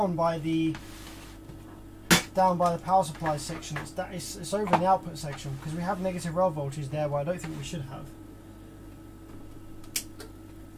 by the power supply section. It's over in the output section because we have negative rail voltage there where I don't think we should have.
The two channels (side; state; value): both; identical; correlation 1.00